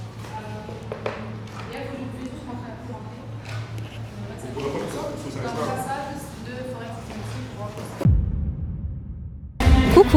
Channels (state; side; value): identical; both; correlation 1.00